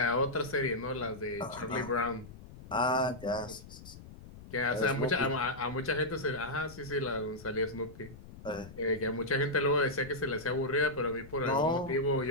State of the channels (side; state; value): left; noise; rumble, 17 dB below the sound